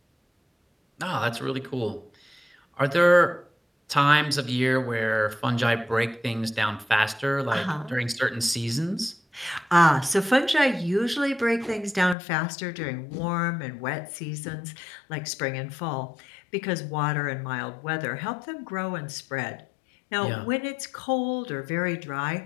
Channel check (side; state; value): right; drops out; at 12.2 s